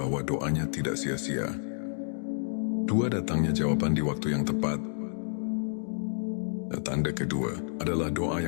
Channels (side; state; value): right; silent; digital silence